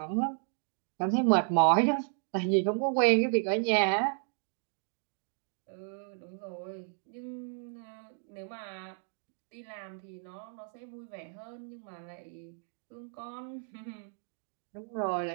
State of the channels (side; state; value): left; silent; digital silence